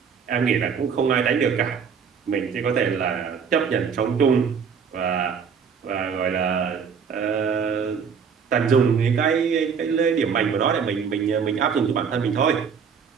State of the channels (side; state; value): left; quieter; 6.5 dB